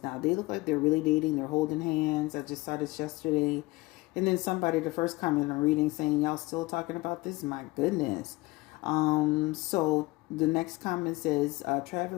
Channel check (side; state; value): right; quieter; 21.8 dB